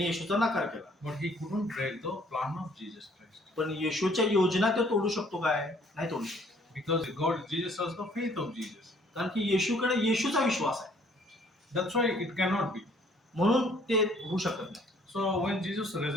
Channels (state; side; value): normal; both; correlation 0.61